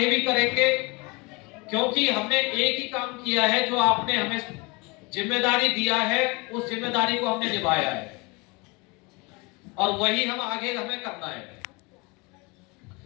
भी करेंगे, क्योंकि हमने एक ही काम किया है। जो आपने हमें जिम्मेदारी दिया है उस जिम्मेदारी को हमने निभाया है और वही हम आगे हमें करना है।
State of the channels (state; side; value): quieter; right; 27.3 dB